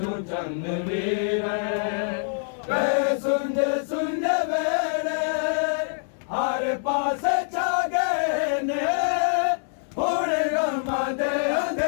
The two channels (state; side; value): silent; right; 62 dB below the other